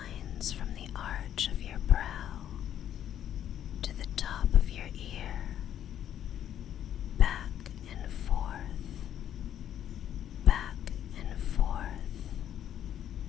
from the arch of your brow to the top of your ear, back and forth,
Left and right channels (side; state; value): right; quieter; 10.4 dB